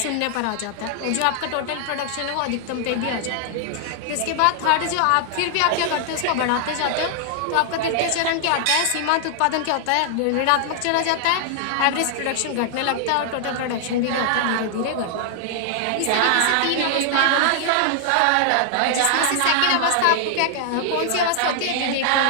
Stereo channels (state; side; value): different; both; correlation 0.00